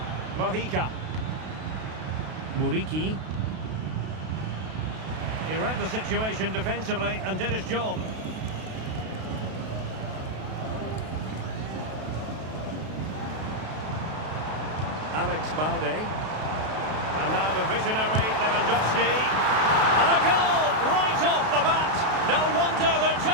Mojica. Muriqi. He read the situation defensively and did his job. Alex Balde. And now the visionary Lewandowski. And a goal right off the bat. No wonder they're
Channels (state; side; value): late; left; 32 ms